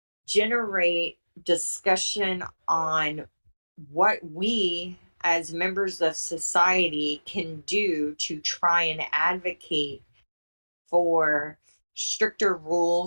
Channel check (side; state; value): both; inverted; correlation -1.00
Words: generate discussion on what we as members of society can do to try and advocate for stricter